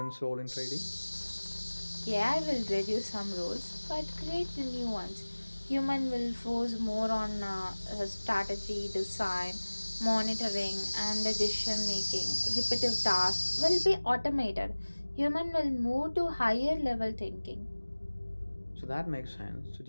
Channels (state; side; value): inverted; both; correlation -1.00